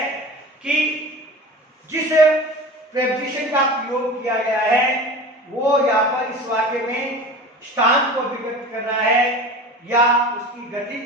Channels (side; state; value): both; normal; correlation 0.35